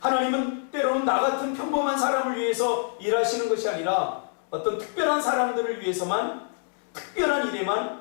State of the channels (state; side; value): silent; right; 61 dB below the other